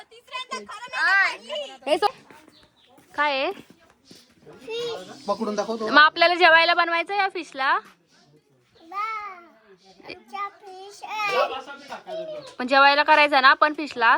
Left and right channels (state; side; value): identical; both; correlation 1.00